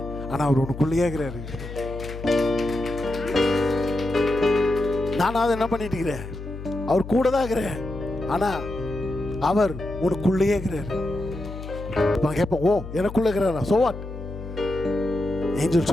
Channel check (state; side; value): noise; left; hum, 10 dB below the sound